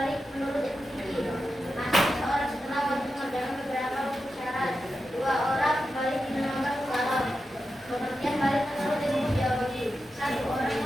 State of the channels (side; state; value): both; normal; correlation 0.90